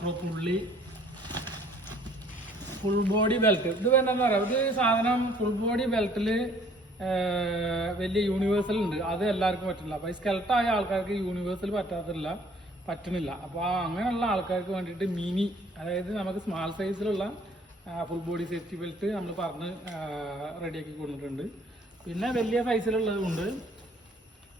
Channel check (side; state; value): both; normal; correlation 0.58